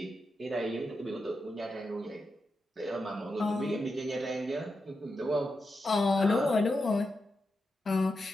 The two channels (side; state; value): both; normal; correlation 0.88